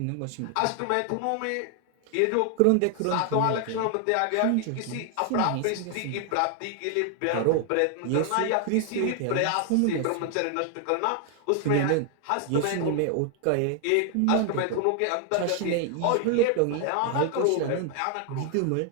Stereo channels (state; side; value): different; both; correlation 0.00